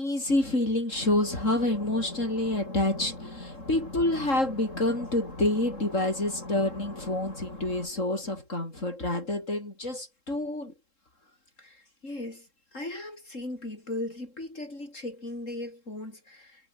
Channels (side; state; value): right; late; 3.7 ms